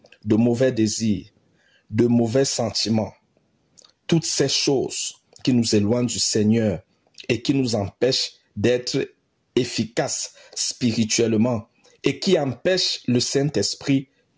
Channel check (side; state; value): both; identical; correlation 1.00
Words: de mauvais désirs, de mauvais sentiments. Toutes ces choses qui nous éloignent du Seigneur et qui nous empêchent d'être efficaces spirituellement et qui empêchent le Saint-Esprit